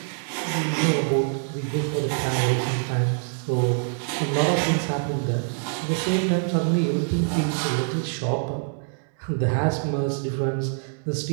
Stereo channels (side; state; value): left; silent; 60 dB below the other